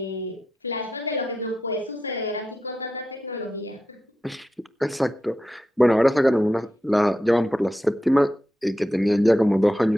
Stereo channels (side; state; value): both; normal; correlation 0.88